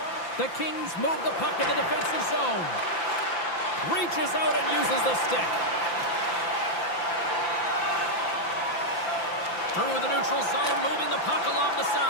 The Kings move the puck in the defensive zone. Reaches out and uses the stick. Through the neutral zone, moving the puck along the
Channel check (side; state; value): right; late; 5.9 ms